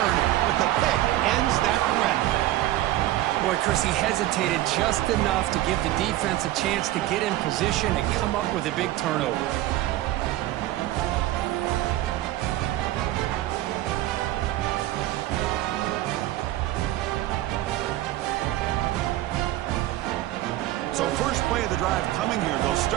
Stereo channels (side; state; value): left; quieter; 15.1 dB